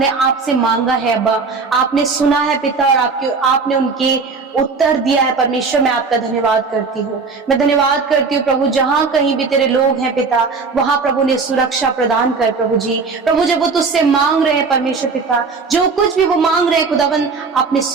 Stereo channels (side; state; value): left; quieter; 4.6 dB